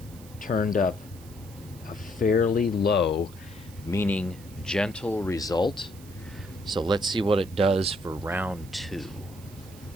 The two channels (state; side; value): noise; right; hiss, 22 dB below the sound